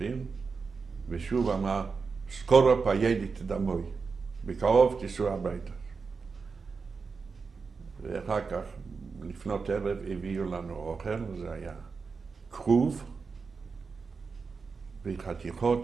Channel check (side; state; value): left; quieter; 4.9 dB